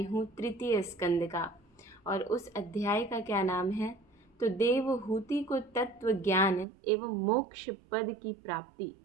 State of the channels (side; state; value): left; drops out; at 6.7 s